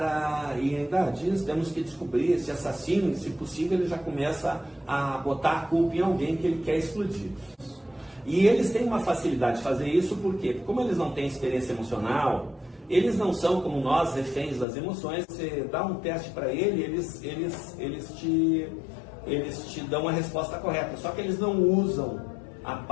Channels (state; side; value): drops out; right; at 14.7 s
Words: e ainda diz, temos que descobrir esse assassino, e se possível ele já começa a botar a culpa em alguém que ele quer explodir. E eles têm uma facilidade de fazer isso, porque como eles não têm experiência emocional, eles não são como nós, reféns das emoções. Você dá um teste para eles te dão a resposta correta, só que eles não usam a